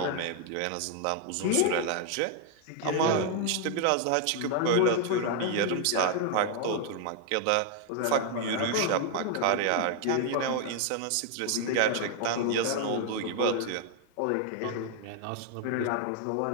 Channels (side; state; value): both; different; correlation 0.00